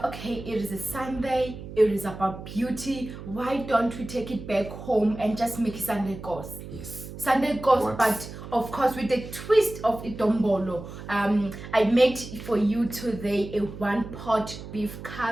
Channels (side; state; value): right; noise; hum, 12 dB below the sound